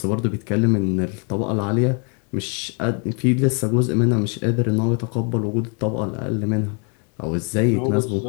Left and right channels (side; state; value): right; quieter; 38.3 dB